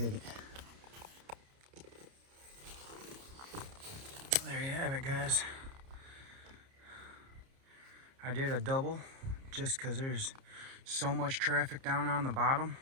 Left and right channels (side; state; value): left; late; 30 ms